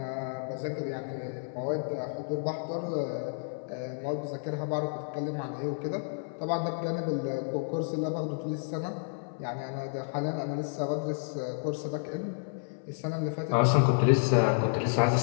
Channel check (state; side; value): silent; right; 57 dB below the other